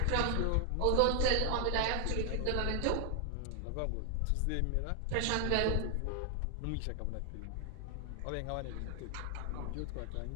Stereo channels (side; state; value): both; different; correlation 0.00